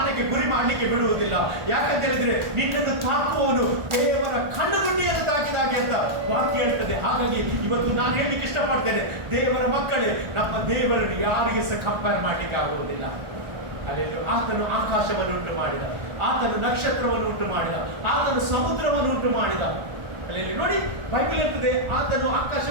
ಗುರಿ ಮಾಡಲಿಕ್ಕೆ ಬಿಡುವುದಿಲ್ಲ. ಯಾಕಂತ ಹೇಳಿದ್ರೆ ನಿನ್ನನ್ನು ತಾಕುವವನು ದೇವರ ಕಣ್ಣುಗುಂಡಿಯನ್ನು ತಾಕಿದಾಗೆ ಅಂತ ವಾಕ್ಯ ಹೇಳ್ತದೆ. ಹಾಗಾಗಿ ಇವತ್ತು ನಾನು ಹೇಳಲಿಕ್ಕೆ ಇಷ್ಟಪಡ್ತೇನೆ, ದೇವರ ಮಕ್ಕಳೇ, ನಮ್ಮ ದೇವರನ್ನು ಯಾರಿಗೆ ಸಹ ಕಂಪೇರ್ ಮಾಡಲಿಕ್ಕೆ ಆಗುವುದಿಲ್ಲ. ಅಲ್ಲಿ ಆತನು ಆಕಾಶವನ್ನು ಉಂಟು ಮಾಡಿದ, ಆತನು ನಕ್ಷತ್ರವನ್ನು ಉಂಟು ಮಾಡಿದ, ಆತನು ಸಮುದ್ರವನ್ನು ಉಂಟು ಮಾಡಿದ. ಅಲ್ಲಿ ನೋಡಿ ಬೈಬಲ್ ಇರ್ತದೆ, ಆತನು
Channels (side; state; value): left; late; 1.4 ms